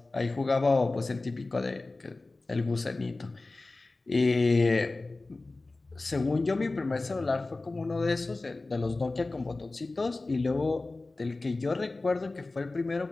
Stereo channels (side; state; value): right; quieter; 3.2 dB